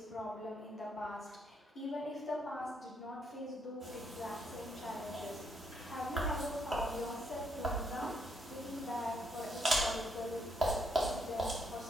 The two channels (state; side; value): normal; both; correlation 0.74